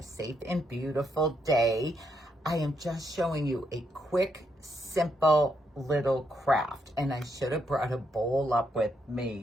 safe and beautiful day. I am just showing you a quick, simple little craft, and I should have brought a bowl up with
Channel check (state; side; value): normal; both; correlation 0.78